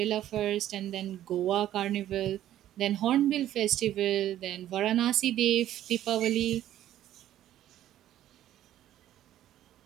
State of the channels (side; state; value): left; quieter; 12.4 dB